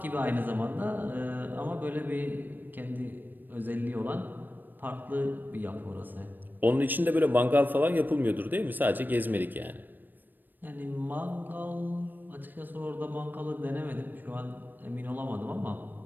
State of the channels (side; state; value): left; late; 0.091 ms